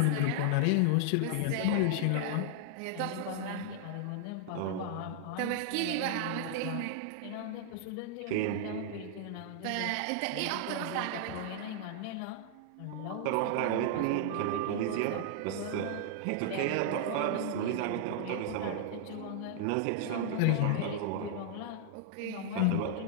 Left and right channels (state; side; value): different; both; correlation -0.01